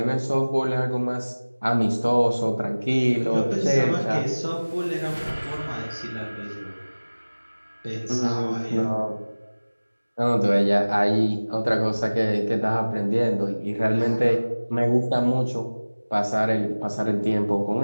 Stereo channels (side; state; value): both; inverted; correlation -1.00